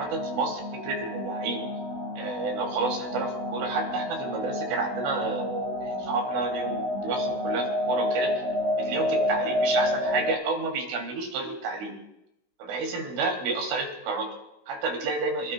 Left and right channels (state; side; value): late; left; 16 ms